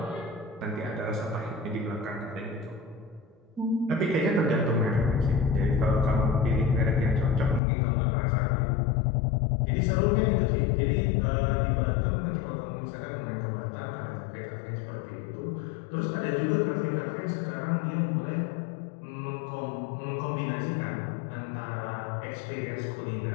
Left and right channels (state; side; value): drops out; right; at 7.6 s